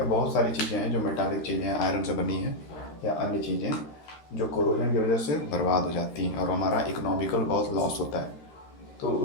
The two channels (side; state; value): right; late; 13 ms